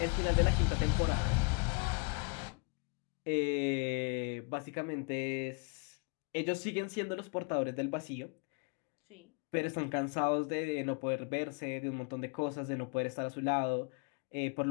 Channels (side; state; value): right; quieter; 33.1 dB